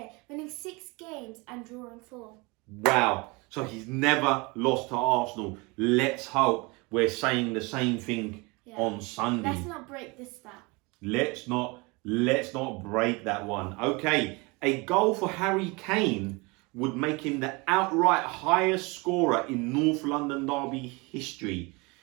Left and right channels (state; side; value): quieter; left; 26.8 dB